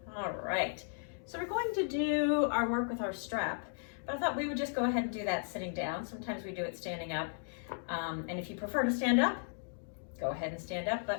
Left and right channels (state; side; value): silent; right; digital silence